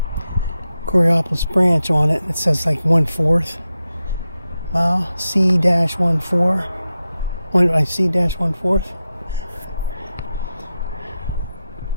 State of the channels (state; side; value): inverted; both; correlation -0.91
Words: Coraopolis branch on it. It says like 1/4 mile, C-14, C-1/4.